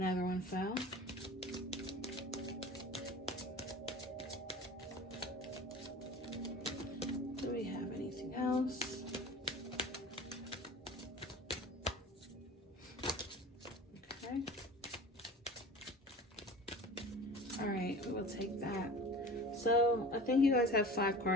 one fell. Do we have anything else? Okay. All right, we will take that. So I think you guys have 5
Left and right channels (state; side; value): normal; both; correlation 0.38